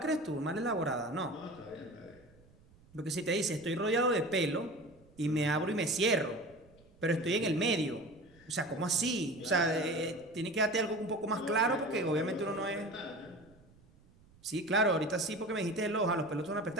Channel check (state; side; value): noise; right; rumble, 27 dB below the sound